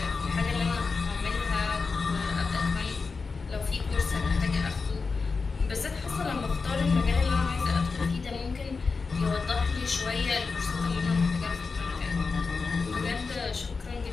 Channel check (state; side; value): quieter; right; 4.6 dB